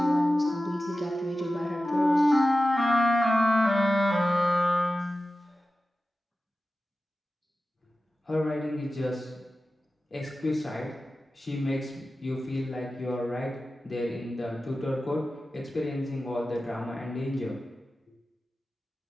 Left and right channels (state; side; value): normal; both; correlation 0.94